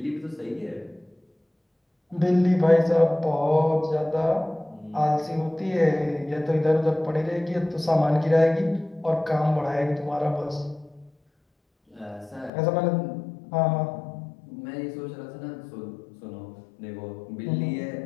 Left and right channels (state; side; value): drops out; right; at 12.5 s